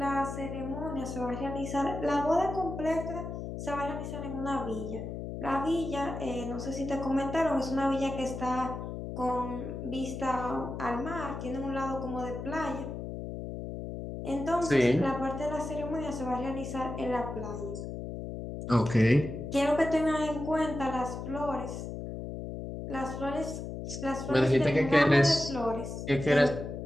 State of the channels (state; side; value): noise; left; hum, 7 dB below the sound